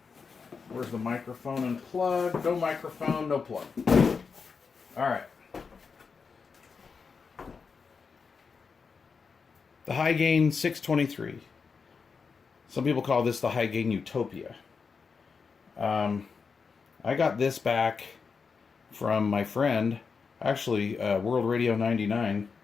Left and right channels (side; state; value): right; quieter; 5.3 dB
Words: where's the microphone and plug? No microphone, no plug. Alright. The high gain 623. Some people call this the high gain Utopia. I got this back from my friend, actually, World Radio 99.